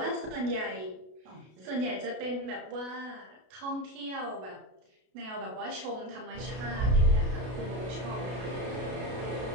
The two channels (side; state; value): left; late; 32 ms